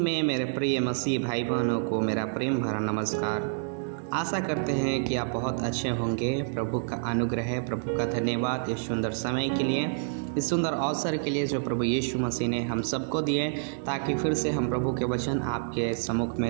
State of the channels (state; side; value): silent; left; digital silence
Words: में मेरे प्रिय मसीह भाई बहनों को मेरा प्रेम भरा नमस्कार। आशा करते हैं कि आप बहुत अच्छे होंगे। प्रभु का अनुग्रह है, प्रभु का धन्यवाद इस सुंदर समय के लिए, इस सुंदर अवसर के लिए जो प्रभु यीशु मसीह ने हम सबको दिए, ताकि फिर से हम प्रभु के वचन आपके सम्मुख में